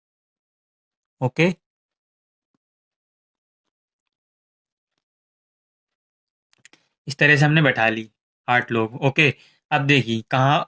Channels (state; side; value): identical; both; correlation 1.00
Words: ओके, इस तरह से हमने बैठा ली 8 लोग। ओके, अब देखिए